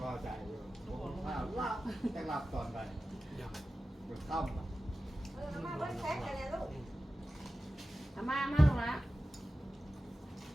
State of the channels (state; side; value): normal; both; correlation 0.95